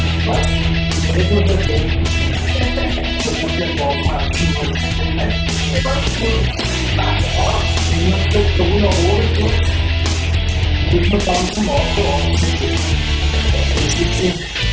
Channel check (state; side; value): identical; both; correlation 1.00